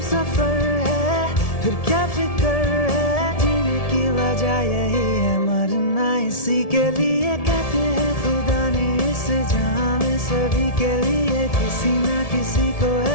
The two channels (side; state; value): right; late; 1.7 ms